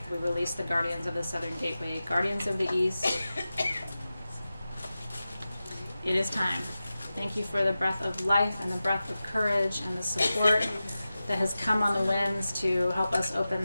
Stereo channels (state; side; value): inverted; both; correlation -0.94